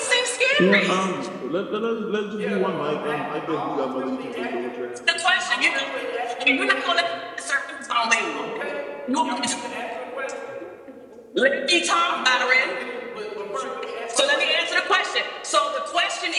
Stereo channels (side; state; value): both; identical; correlation 1.00